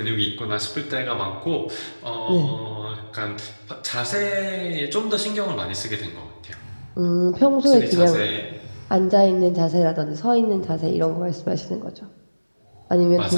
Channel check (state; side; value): inverted; both; correlation -1.00